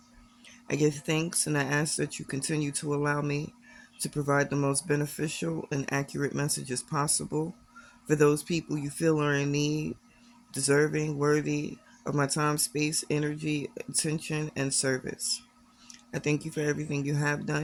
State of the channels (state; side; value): identical; both; correlation 1.00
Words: I give thanks and I ask that you continue to allow me to provide the most beneficial and accurate messages possible for those people you feel are in need, deserving, worthy of my time, space, energy, attention, and service. I thank you for everything you have